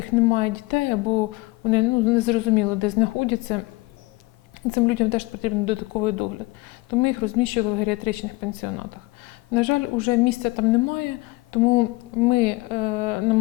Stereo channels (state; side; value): quieter; right; 22.8 dB